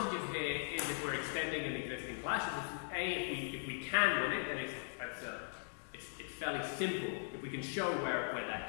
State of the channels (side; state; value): right; silent; digital silence